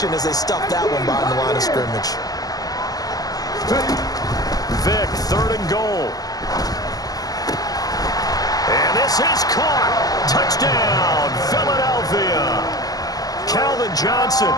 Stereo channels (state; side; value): late; right; 0.18 ms